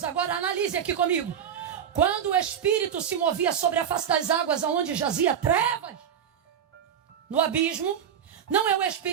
Agora analise aqui comigo. Quando o Espírito se movia sobre a face das águas, aonde jazia trevas, no abismo, não é o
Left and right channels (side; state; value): left; quieter; 8.6 dB